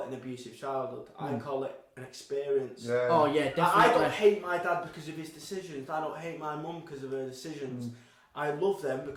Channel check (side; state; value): both; identical; correlation 1.00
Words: it an abusive childhood. I call it an experience. Yeah. Oh yeah, definitely. I don't hate my dad because of his decisions. I don't hate my mum because of her decisions. I love them